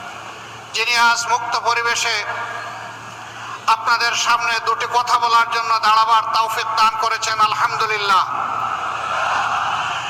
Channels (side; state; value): both; identical; correlation 1.00